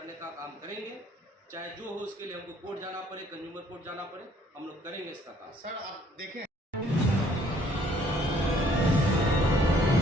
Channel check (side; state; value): both; normal; correlation 0.61